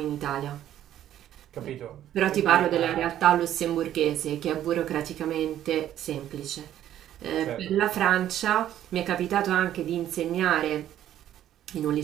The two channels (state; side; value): quieter; left; 11.7 dB